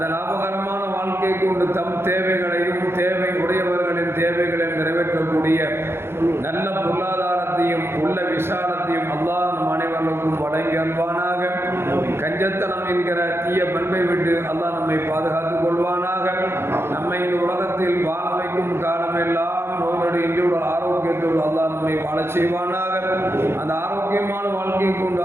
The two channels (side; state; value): left; late; 0.12 ms